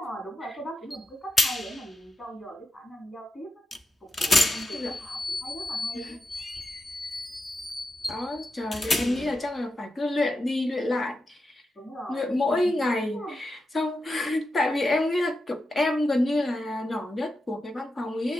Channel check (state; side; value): normal; both; correlation 0.88